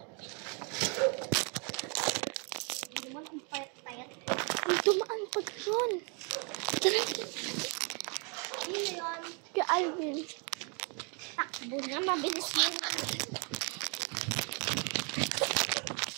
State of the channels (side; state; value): left; quieter; 36.4 dB